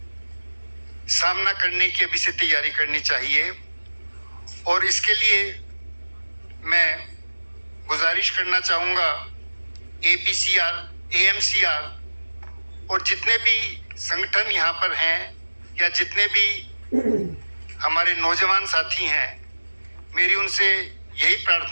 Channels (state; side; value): inverted; both; correlation -1.00